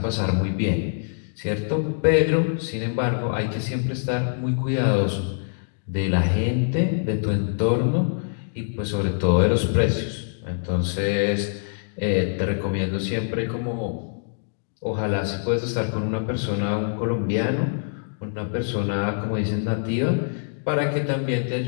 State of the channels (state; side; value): silent; right; digital silence